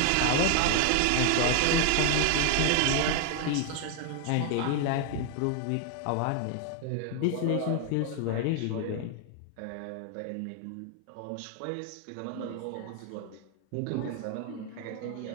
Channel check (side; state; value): both; different; correlation 0.00